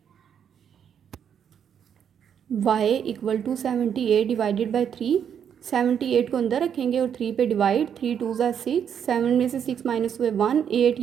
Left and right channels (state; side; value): quieter; left; 8.3 dB